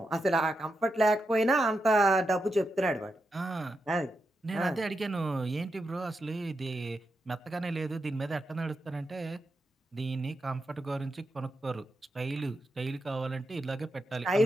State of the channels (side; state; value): both; normal; correlation 0.86